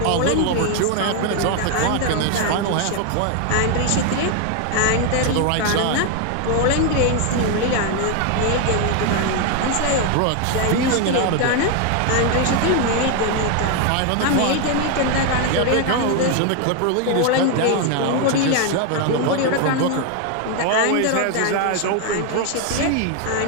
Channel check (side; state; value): both; different; correlation 0.01